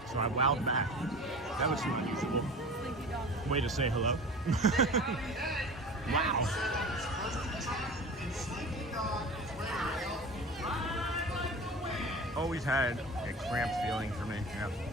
So I wowed back. That was an unusual way to say hello. Wow. Always had a cramped feeling for me. Yeah.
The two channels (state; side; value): normal; both; correlation 0.36